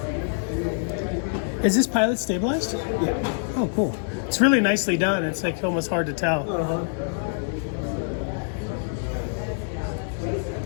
Is this Pilot stabilized? Yeah. Oh, cool. It's really nicely done. It's like almost hard to tell. Uh-huh.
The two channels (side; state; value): right; silent; digital silence